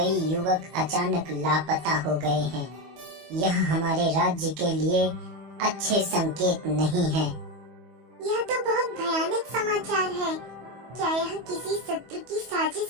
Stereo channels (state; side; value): late; left; 25 ms